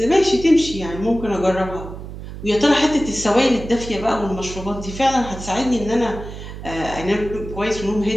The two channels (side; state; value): right; noise; hum, 11 dB below the sound